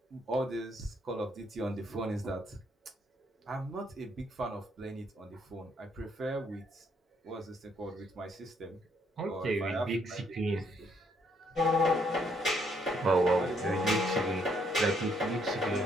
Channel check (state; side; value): normal; both; correlation 0.70